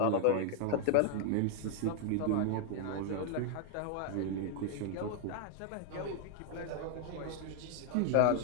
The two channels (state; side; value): different; both; correlation 0.00